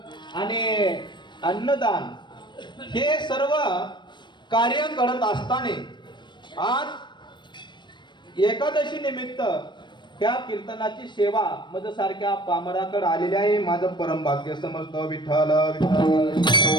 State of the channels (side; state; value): right; late; 0.22 ms